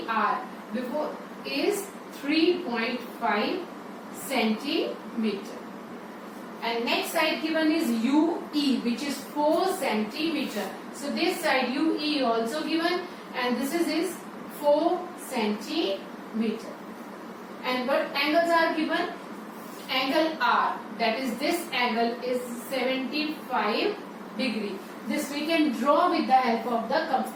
before is 3.5 centimeter. And next side given is UE, which is 4 centimeter. So this side UE also given, and this is 4 centimeter. And what angles are given? Angle R, that is this angle is 75 degree. This we can draw with the help of the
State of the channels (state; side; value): identical; both; correlation 1.00